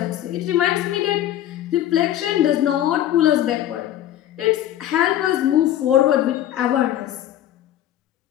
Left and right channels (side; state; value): right; quieter; 12.3 dB